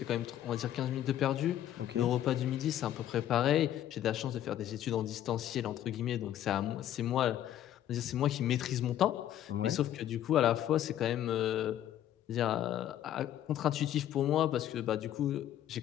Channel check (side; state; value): right; quieter; 11.7 dB